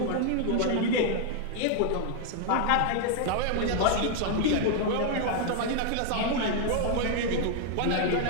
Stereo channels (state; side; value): different; both; correlation 0.00